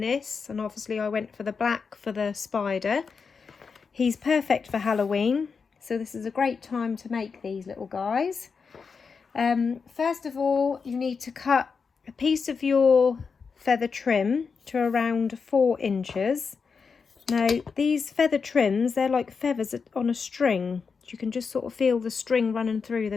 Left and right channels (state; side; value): quieter; right; 5.4 dB